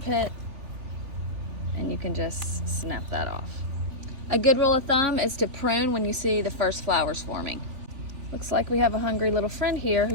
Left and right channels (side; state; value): left; late; 3.3 ms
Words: and you can just snap that off. A good rule of thumb is to prune when you see the first flowers forming. Looks like we have a hungry little friend here